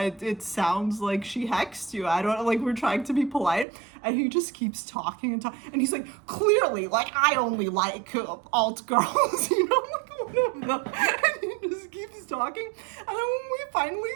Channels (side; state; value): left; drops out; at 3.7 s